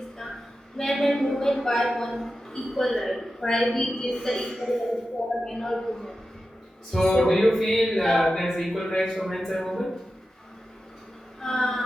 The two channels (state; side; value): normal; both; correlation 0.92